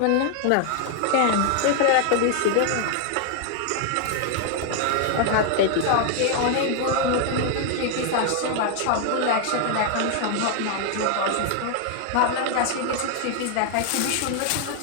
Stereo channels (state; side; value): different; both; correlation 0.00